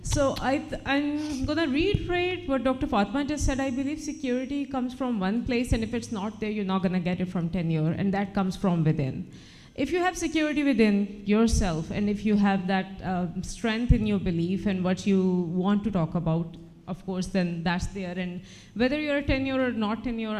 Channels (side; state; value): both; identical; correlation 1.00